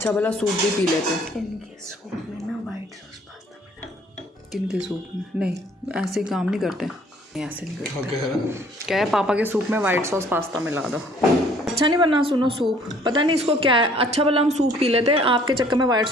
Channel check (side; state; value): both; normal; correlation 0.58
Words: भला सूप भी पी लेते। इनके सूप में ना वाइट सॉस पास्ता मिला। किनके सूप में? नहीं ऐसे काम नहीं करते, ऐसे नहीं करते। क्या है पापा के सूप में वाइट सॉस पास्ता मिला दो। अच्छा नहीं बना सुनो सूप, पता नहीं इसको क्या है। अच्छा भला हम सूप पी लेते, आपके चक्कर में वाइट